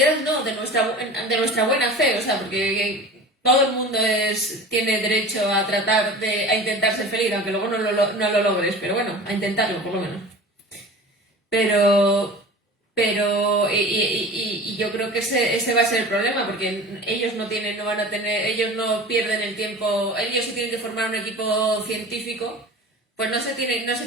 no, de nuestra buena fe, o sea, porque todo el mundo tiene derecho a a intentar ser feliz, aunque luego no lo logres, pero bueno, a intentarlo por lo menos. Pero yo creo que ese va a ser el problema, porque ellos no pierden el tiempo, ellos sí tienen que formar un equipo científico, pues no se tienen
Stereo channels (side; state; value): both; normal; correlation 0.37